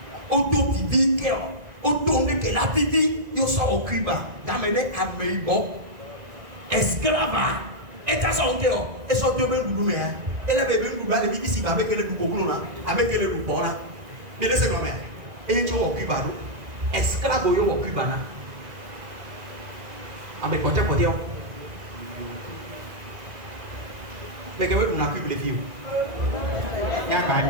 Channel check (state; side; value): late; left; 1.9 ms